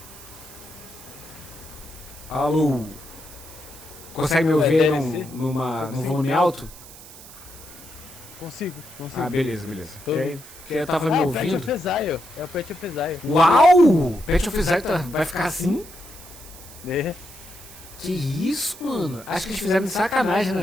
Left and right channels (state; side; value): noise; right; hiss, 18 dB below the sound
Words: Alô? Consegue me ouvir num volume alto? Consigo. Ah, beleza. Porque eu tava me ouvindo. É o Pet of Exile. Uau! Pet of Exile vai ficar assim? É. Que isso, mano? Acho que eles fizeram de sacanagem,